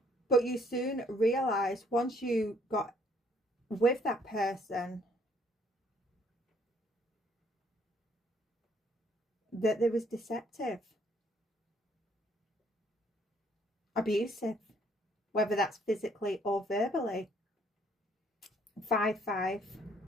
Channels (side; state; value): both; normal; correlation 0.64